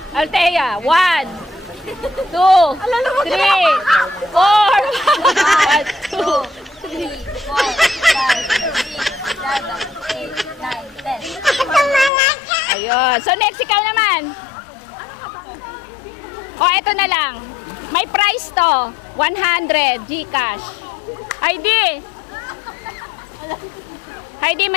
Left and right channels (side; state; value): right; drops out; at 12.1 s